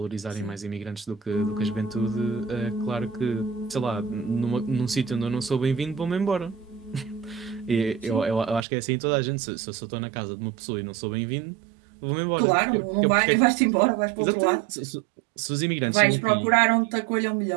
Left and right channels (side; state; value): left; drops out; at 8.7 s